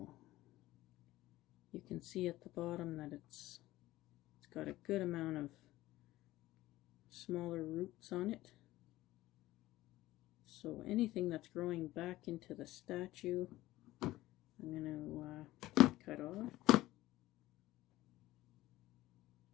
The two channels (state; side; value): quieter; right; 16.7 dB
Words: you can see at the bottom that it's got a good amount of smaller roots on it. So anything that's growing back into the statue, I'm going to cut off.